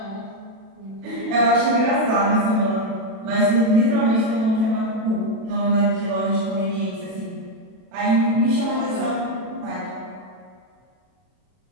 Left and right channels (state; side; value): late; left; 32 ms